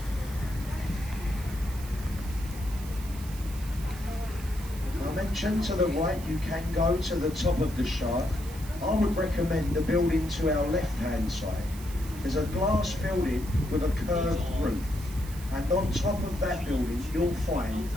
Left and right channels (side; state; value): right; noise; hiss, 16 dB below the sound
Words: I mentioned to the right you can go to the top of the shard. I would recommend the building to our left-hand side. There's a glass building with a curved roof, and on top of that building you'll find